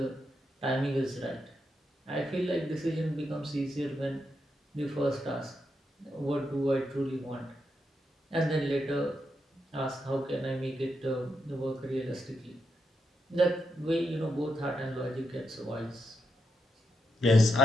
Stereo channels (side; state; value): both; normal; correlation 0.83